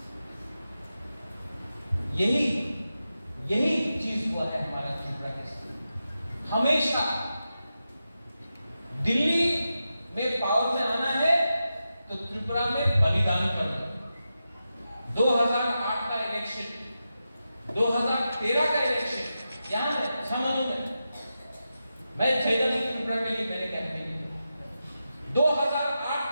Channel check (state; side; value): inverted; both; correlation -0.90